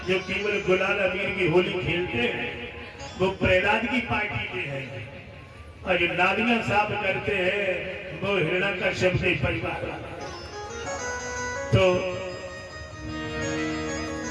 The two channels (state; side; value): identical; both; correlation 1.00